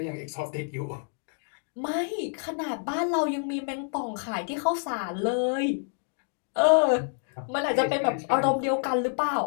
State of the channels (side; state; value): right; silent; 59 dB below the other